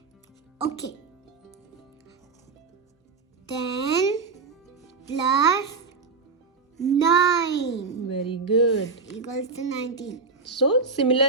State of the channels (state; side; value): quieter; left; 4.6 dB